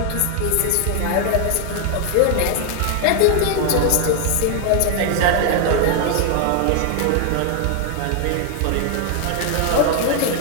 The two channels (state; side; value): different; both; correlation 0.00